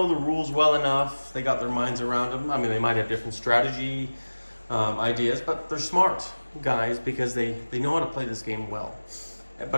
the rules well enough, they got their minds around them. I mean, they might have different strategy ideas, but they're smart guys because they know how to play this game well.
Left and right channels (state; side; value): inverted; both; correlation -1.00